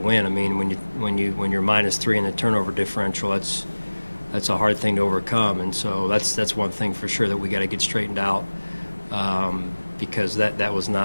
When you're -3 in the turnover differential, that's a hard thing to overcome, and so that's one thing for sure that we got to get straightened out because that was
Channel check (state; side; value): inverted; both; correlation -1.00